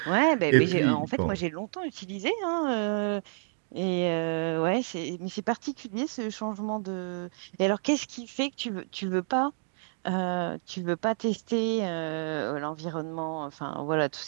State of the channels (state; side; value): silent; left; digital silence